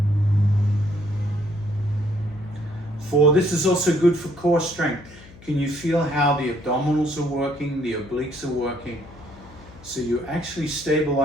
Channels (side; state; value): left; noise; hum, 21 dB below the sound